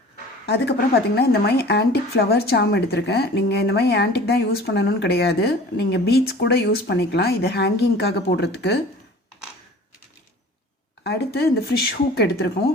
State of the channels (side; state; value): both; normal; correlation 0.44